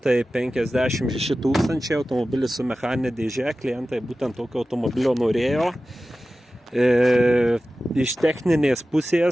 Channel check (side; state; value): both; normal; correlation 0.95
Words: 000, automobilis su mechaninė dėžė, klientai būtent tokio automobilio norėjo. Iš techninės